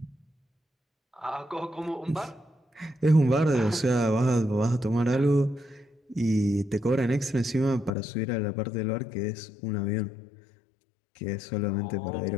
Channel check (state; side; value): drops out; right; at 7.9 s